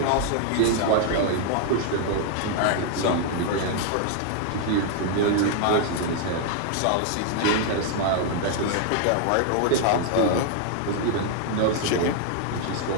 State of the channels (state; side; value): different; both; correlation 0.00